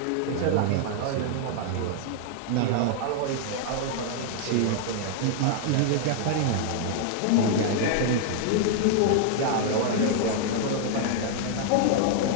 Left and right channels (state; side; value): different; both; correlation 0.00